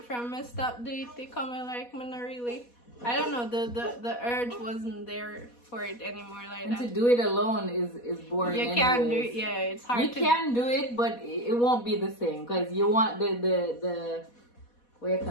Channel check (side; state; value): right; late; 4.2 ms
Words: stop doing it coming like me not really. I don't know, the urge wasn't there for it anymore like that. To do it alone is boring. You can't do it. Yeah, it's hard. You can do it, but it won't be the same because you want the what do you